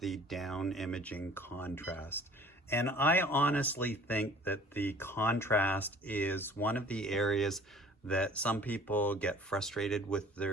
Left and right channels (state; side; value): normal; both; correlation 0.50